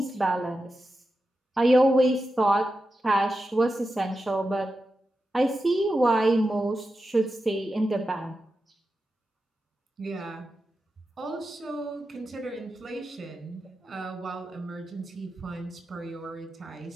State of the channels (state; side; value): normal; both; correlation 0.90